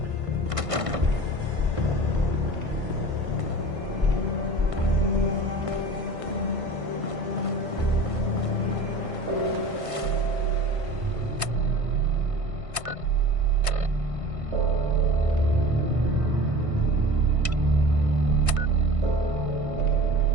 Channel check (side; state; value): left; late; 1.5 ms